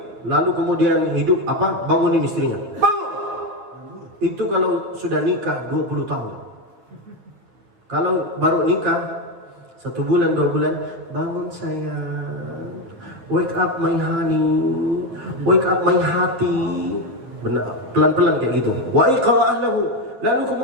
lalu kemudian hidup bangunin istrinya. Bangun. Itu kalau sudah nikah 20 tahun. Kalau baru nikah 1 bulan 2 bulan, bangun sayang, wake up my honey, wake up my hati. pelan-pelan kayak gitu. Wa iqra ahlahu. Lalu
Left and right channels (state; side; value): late; left; 9.4 ms